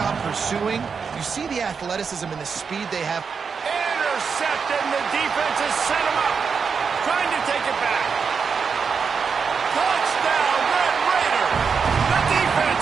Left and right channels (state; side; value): quieter; left; 5.8 dB